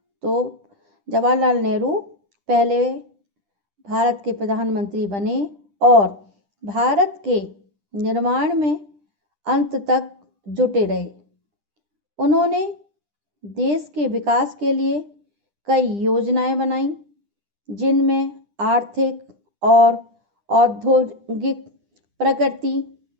तो जवाहरलाल नेहरू पहले भारत के प्रधानमंत्री बने और भारत के निर्माण में अंत तक जुटे रहे। उन्होंने देश के विकास के लिए कई योजनाएं बनाई, जिनमें आर्थिक और औद्योगिक प्रगति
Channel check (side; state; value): left; late; 10 ms